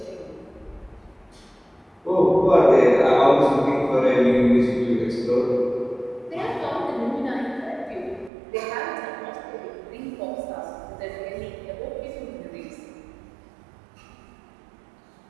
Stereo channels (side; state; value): left; drops out; at 8.3 s